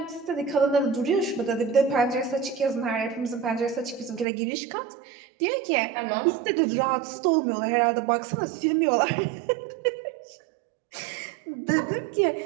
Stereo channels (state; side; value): drops out; left; at 4.2 s